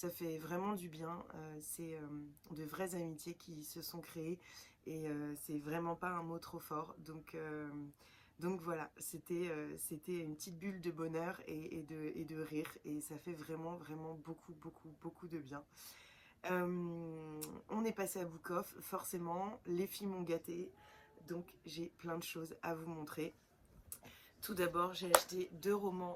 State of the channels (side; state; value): both; identical; correlation 1.00